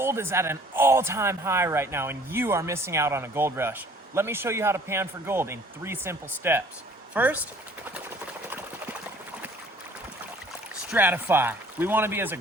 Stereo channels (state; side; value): normal; both; correlation 0.54